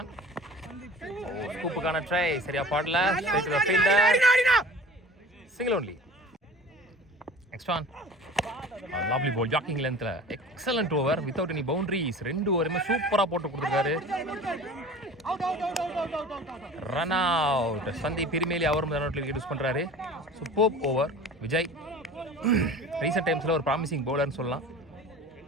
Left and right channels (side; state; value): both; normal; correlation 0.41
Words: ஸ்கூப்புக்கான ட்ரை சரியா பாடல. Single only. Next one lovely ball ஜாக்கிங் லென்த்ல excellent over without any boundaries. 2 ஓவருமே சூப்பரா போட்டு கொடுத்துருக்காரு. Run out. சந்தீப் இருமேலி அவரும் ரன் அவுட்ல விக்கெட் யூஸ் பண்றாரு. Super over Vijay. ரீசெண்ட் டைம்ஸ்ல ஒரு ப்ராமிசிங் பவுலர்னு சொல்லலாம்.